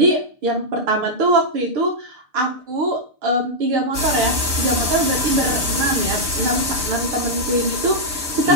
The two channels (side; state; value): left; late; 6.8 ms